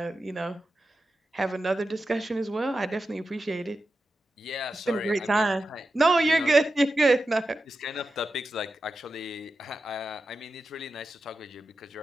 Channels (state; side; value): normal; both; correlation 0.90